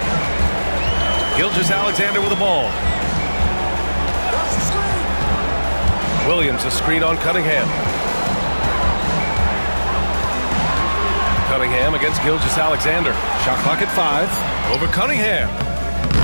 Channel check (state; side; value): inverted; both; correlation -1.00